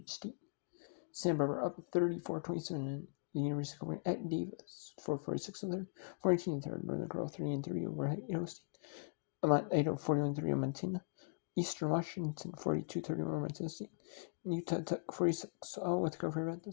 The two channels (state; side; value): quieter; right; 35.2 dB